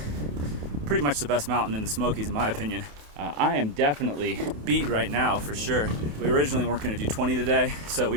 pretty much the best mountain in the Smokies in my opinion. I am definitely beat right now for sure. We originally weren't going to do 20 today, so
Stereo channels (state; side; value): late; left; 28 ms